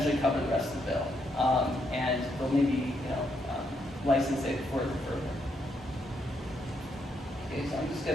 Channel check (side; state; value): both; normal; correlation 0.77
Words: cover the rest of the bill, and they'll maybe license it further. Okay, so I'm just